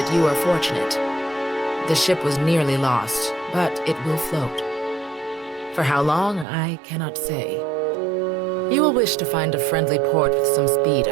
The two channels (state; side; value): drops out; left; at 6.5 s